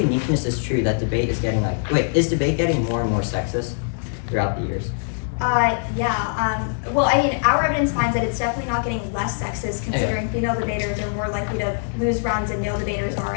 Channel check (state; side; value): silent; right; digital silence